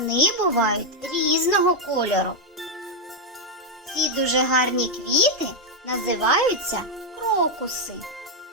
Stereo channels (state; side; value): normal; both; correlation 0.01